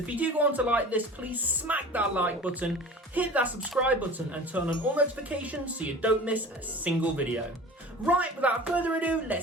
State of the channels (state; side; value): normal; both; correlation 0.39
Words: if you do want to like this, please smack that like button, hit that subscribe button and turn on all notifications so you don't miss a single video. Right, without further ado,